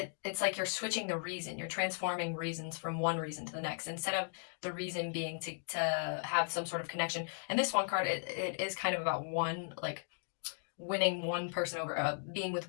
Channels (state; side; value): silent; right; digital silence